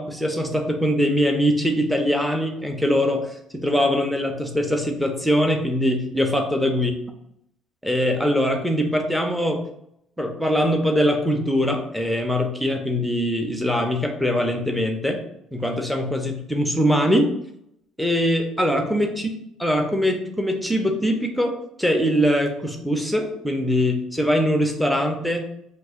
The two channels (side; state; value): both; normal; correlation 0.77